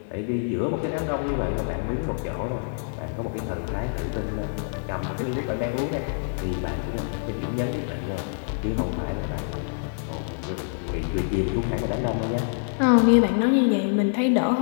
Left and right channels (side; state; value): right; silent; 61 dB below the other